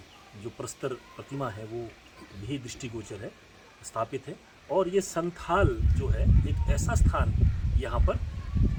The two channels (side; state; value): both; identical; correlation 1.00